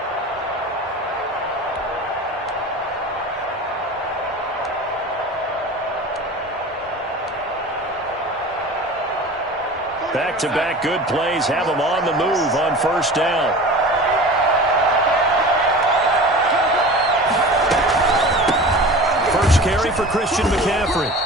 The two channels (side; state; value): both; normal; correlation 0.37